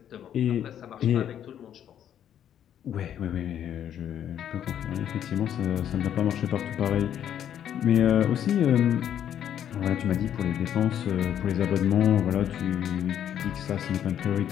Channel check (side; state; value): right; quieter; 9.9 dB